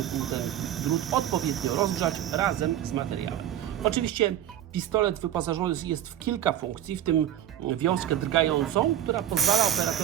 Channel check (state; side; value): quieter; left; 11.2 dB